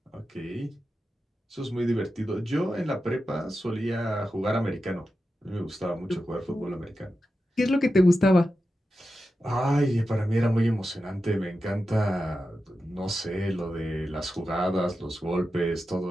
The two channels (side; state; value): both; normal; correlation 0.91